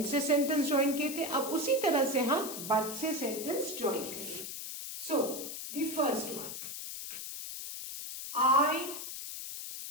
से सेंटेंस ज्वाइन किए थे, अब उसी तरह से हम बट से सेंटेंस ज्वाइन करेंगे। सो द फर्स्ट वन, आई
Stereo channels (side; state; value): left; noise; hiss, 8 dB below the sound